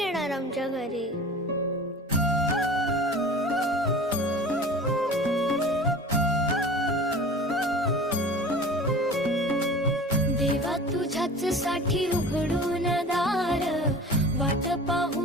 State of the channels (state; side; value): normal; both; correlation 0.40